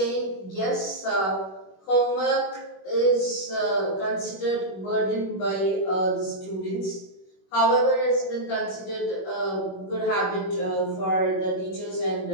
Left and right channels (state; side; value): late; right; 21 ms